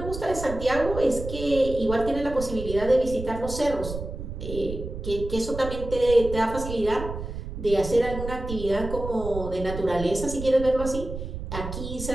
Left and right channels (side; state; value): right; noise; rumble, 8 dB below the sound